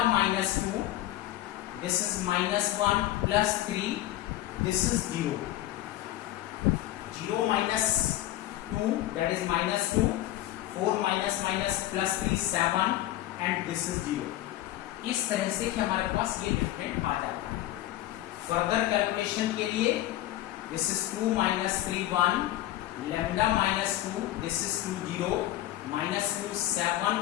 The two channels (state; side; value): quieter; right; 14.6 dB